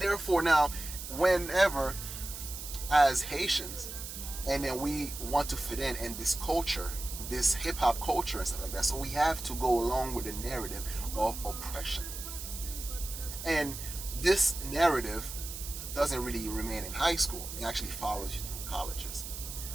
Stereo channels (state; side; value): noise; right; hiss, 9 dB below the sound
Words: now, whenever as Haitians, and then we want to fit in this culture, this hip-hop culture and stuff like that, so we have to go along with the narrative of oppression. And this narrative doesn't really remain in high school. It actually follows you through colleges,